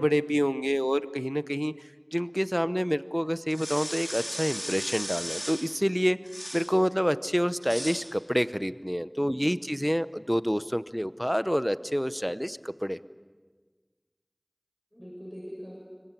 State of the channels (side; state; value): both; identical; correlation 1.00